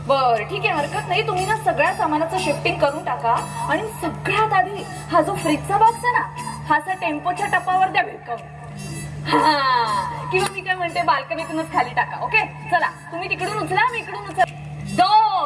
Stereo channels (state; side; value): identical; both; correlation 1.00